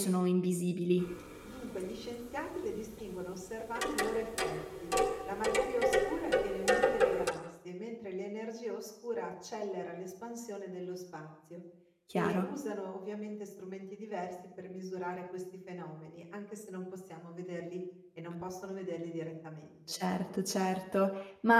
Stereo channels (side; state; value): both; identical; correlation 1.00